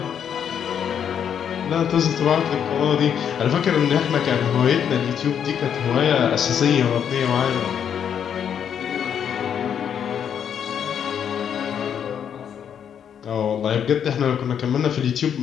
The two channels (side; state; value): right; quieter; 8.4 dB